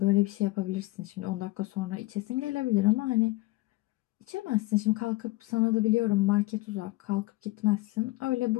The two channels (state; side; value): quieter; right; 20.3 dB